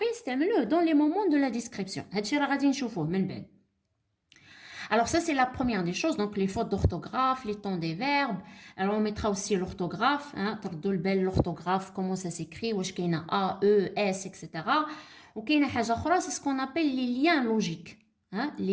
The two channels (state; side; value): identical; both; correlation 1.00